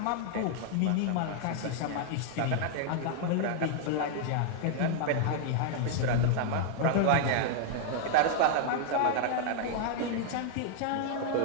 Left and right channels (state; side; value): different; both; correlation -0.01